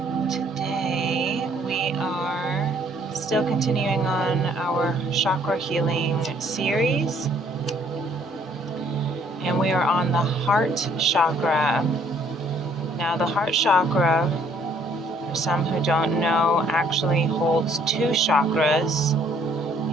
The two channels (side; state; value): both; normal; correlation 0.62